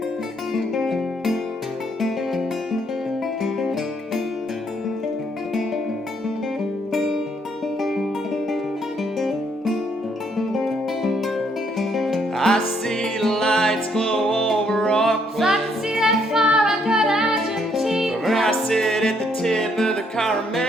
I see the lights glow over Auckland. If I could see that far, I'd go to Argentina. Where I sit at the tip of the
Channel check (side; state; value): both; normal; correlation 0.70